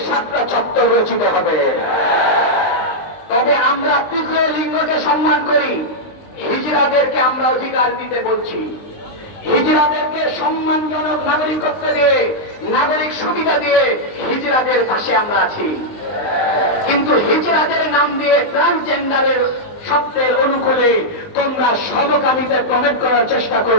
সাতটা চত্বর রচিত হবে। তবে আমরা তৃতীয় লিঙ্গকে সম্মান করি। হিজড়াদেরকে আমরা অধিকার দিতে বলছি। হিজড়াদেরকে সম্মানজনক নাগরিকত্ব দিয়ে, নাগরিক সুবিধা দিয়ে হিজড়াদের পাশে আমরা আছি। কিন্তু হিজড়াদের নাম দিয়ে ট্রান্সজেন্ডারের শব্দের অনুকূলে তোমরা সমকামিতা প্রমেট করার চেষ্টা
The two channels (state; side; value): late; right; 19 ms